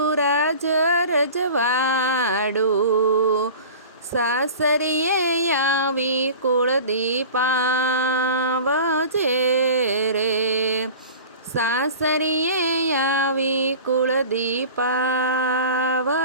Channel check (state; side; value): inverted; both; correlation -0.39